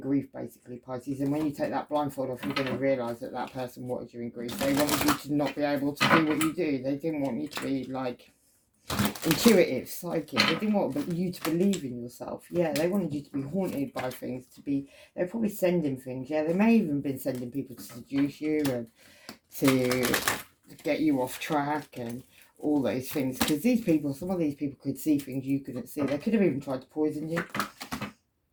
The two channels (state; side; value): identical; both; correlation 1.00